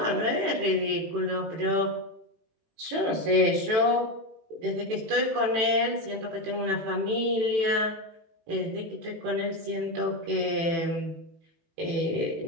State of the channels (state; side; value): late; left; 18 ms